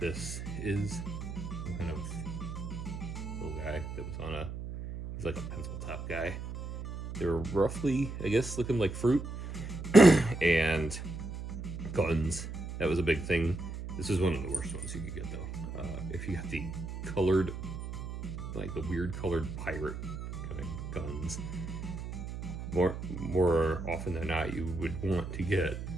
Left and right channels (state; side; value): noise; right; hum, 7 dB below the sound